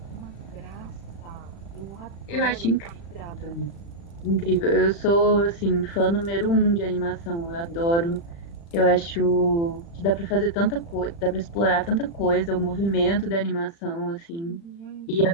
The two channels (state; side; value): late; right; 35 ms